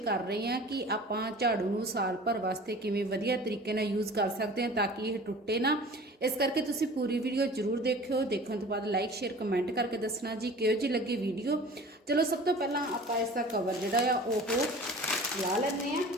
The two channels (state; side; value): normal; both; correlation 0.42